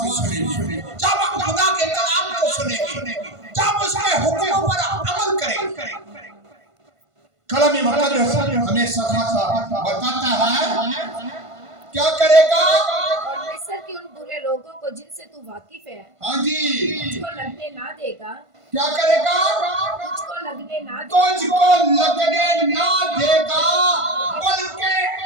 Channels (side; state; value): left; late; 1.5 ms